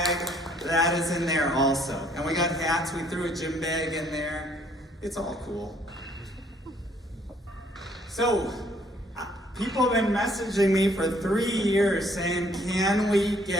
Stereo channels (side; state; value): both; normal; correlation 0.64